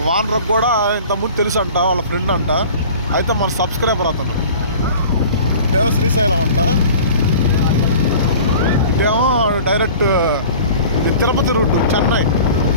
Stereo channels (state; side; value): inverted; both; correlation -0.42